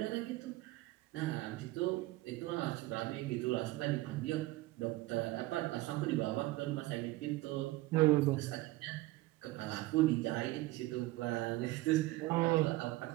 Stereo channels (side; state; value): left; quieter; 19.2 dB